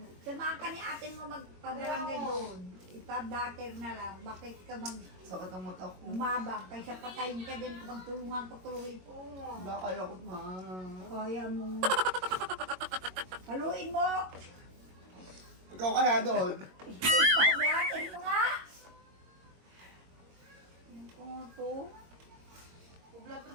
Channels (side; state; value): left; late; 22 ms